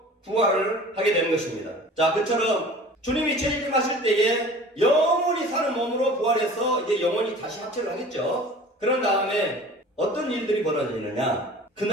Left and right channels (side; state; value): both; normal; correlation 0.43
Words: 부활을 하게 되는 것입니다. 자, 그처럼 주님이 재림하실 때에 영원히 사는 몸으로 부활해서 이제 영원히 다시 합체를 하겠죠. 그런 다음에 어떤 일들이 벌어지느냐?